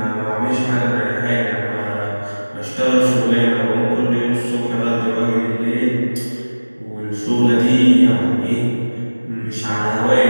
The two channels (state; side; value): inverted; both; correlation -1.00